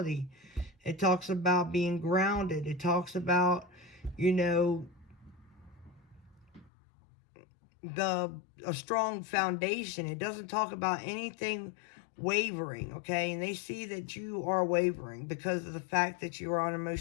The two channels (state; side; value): drops out; right; at 6.7 s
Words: It talks about being grounded. It talks about, you know, a strong foundation. It doesn't talk about anything wavering, okay? And they see that you are wavering because of the fact that you are